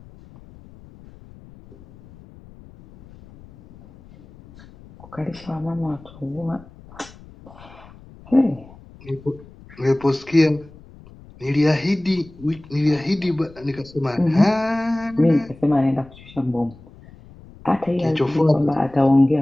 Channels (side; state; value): left; noise; rumble, 22 dB below the sound